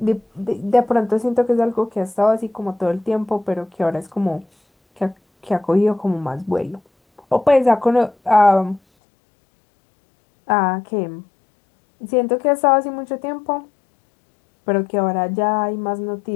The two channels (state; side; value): drops out; right; at 8.8 s